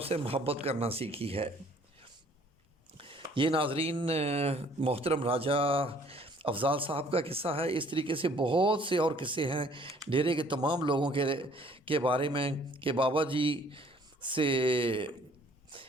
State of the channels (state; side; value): normal; both; correlation 0.58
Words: سے محبت کرنا سیکھی ہے۔ یہ ناظرین محترم راجہ افضال صاحب کا قصہ ہے۔ اس طریقے سے بہت سے اور قصے ہیں ڈیرے کے تمام لوگوں کے بارے میں کہ بابا جی سے